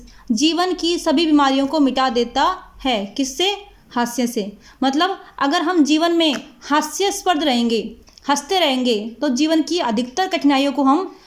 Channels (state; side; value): identical; both; correlation 1.00